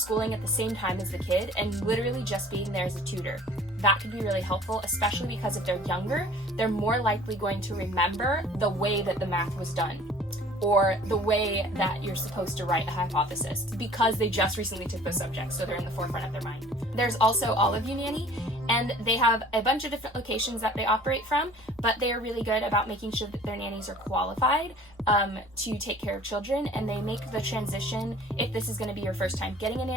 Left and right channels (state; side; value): normal; both; correlation 0.49